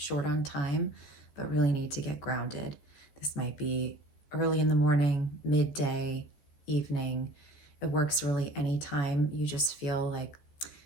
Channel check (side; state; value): right; late; 14 ms